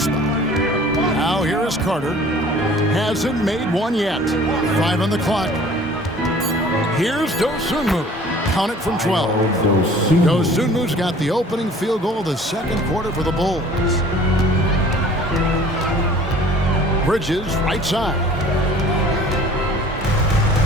spot. Now here is Carter. Hasn't made one yet. 5 on the clock. Here's Dosunmu. Count it from 12. Dosunmu's got the opening field goal of the second quarter for the Bulls. Bridges, right side.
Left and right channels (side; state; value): both; normal; correlation 0.50